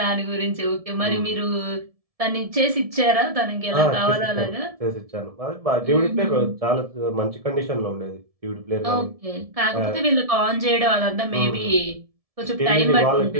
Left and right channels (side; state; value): left; late; 1.7 ms